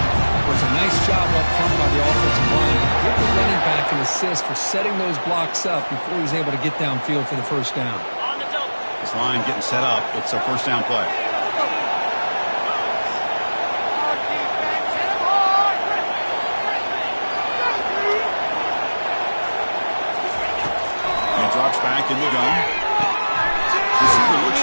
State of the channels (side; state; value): both; inverted; correlation -1.00